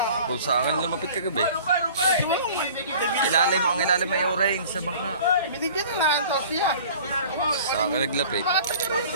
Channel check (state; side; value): inverted; both; correlation -0.46